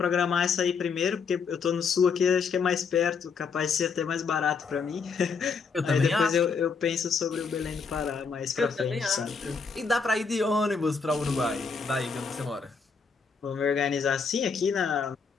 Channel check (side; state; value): right; quieter; 5.3 dB